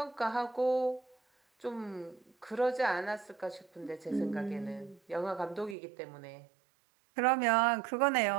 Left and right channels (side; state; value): left; drops out; at 5.8 s